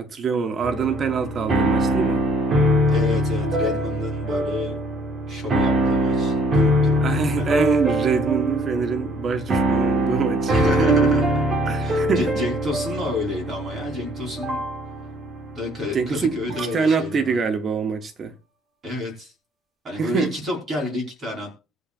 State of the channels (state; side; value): normal; both; correlation 0.61